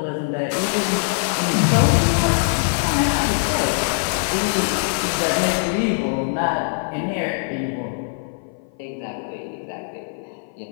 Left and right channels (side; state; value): right; silent; 56 dB below the other